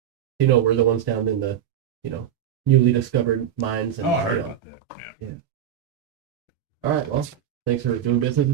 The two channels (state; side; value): quieter; left; 9.8 dB